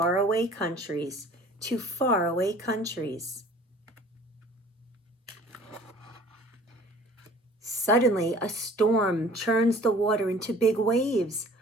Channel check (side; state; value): both; normal; correlation 0.49